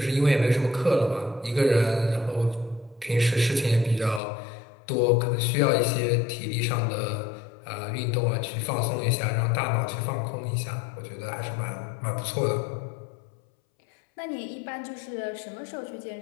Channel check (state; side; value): drops out; right; at 4.2 s